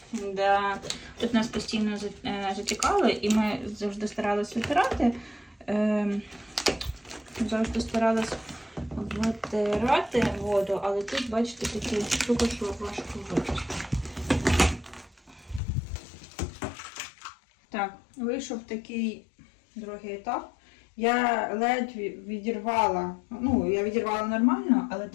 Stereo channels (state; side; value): drops out; right; at 15.6 s